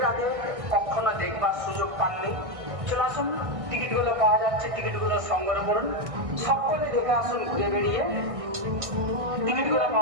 আগে কখনো দেখবার সুযোগ পাননি, চলে আসুন, টিকিটগুলো পাওয়া যাচ্ছে, টিকিটগুলো সংগ্রহ করুন, সকলে দেখে আসুন। ঘুরে বেরিয়ে টিকিটগুলো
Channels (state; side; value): late; left; 1.6 ms